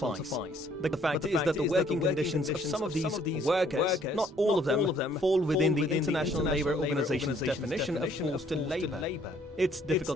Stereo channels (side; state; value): both; normal; correlation 0.62